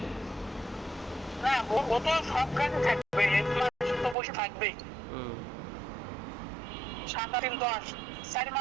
না, ও তো সব গাড়ি থাকবে, 1 মাস তো বসে থাকবেই। হুম 7 3 10 4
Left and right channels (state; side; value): drops out; left; at 4.2 s